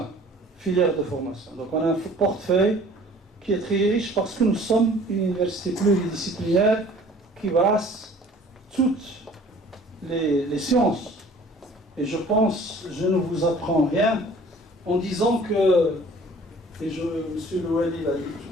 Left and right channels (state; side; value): normal; both; correlation 0.51